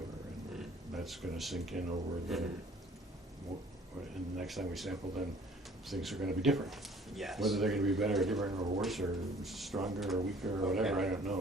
and that's going to sink in over and the next time we sample, then things are going to be different. Yes. Whether they're going to be better or different or worse or stronger or weaker or whatever, Okay. I don't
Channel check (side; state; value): both; normal; correlation 0.54